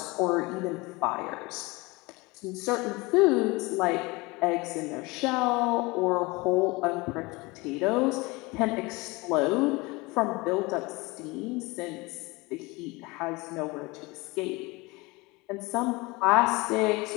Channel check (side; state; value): right; quieter; 24.3 dB